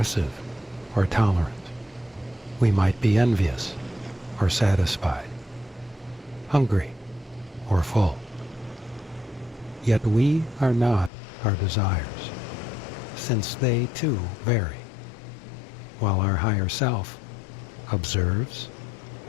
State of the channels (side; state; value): right; drops out; at 11.1 s